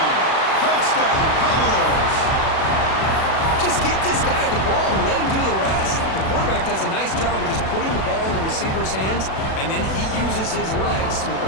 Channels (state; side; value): late; right; 37 ms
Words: Touchdown, Commodores. Just give this guy the ball and let him do the rest. The quarterback does a nice job of just putting the ball in the receiver's hands, and then he uses his legs with